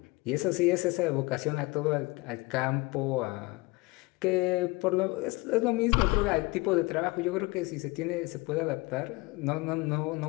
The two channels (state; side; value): quieter; right; 24.6 dB